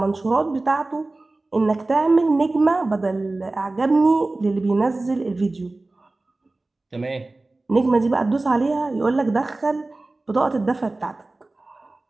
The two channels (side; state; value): left; quieter; 3.1 dB